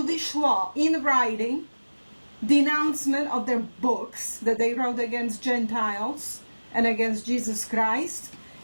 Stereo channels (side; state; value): both; inverted; correlation -1.00